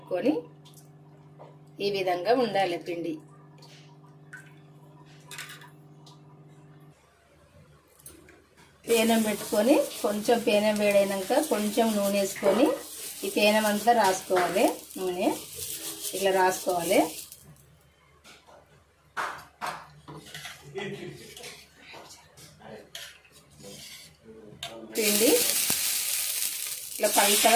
ఈ విధంగా ఉండాలి పిండి. పేనం పెట్టుకొని కొంచెం పేనం వేడైనాక కొంచెం నూనె వేసుకొని ఈ పేనం అంతా రాసుకోవాలి. నూనె ఇట్లా రాసుకోవాలి. పిండి ఇట్లా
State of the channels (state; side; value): identical; both; correlation 1.00